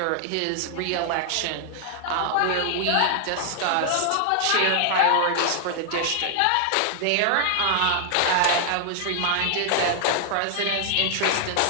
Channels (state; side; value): different; both; correlation 0.00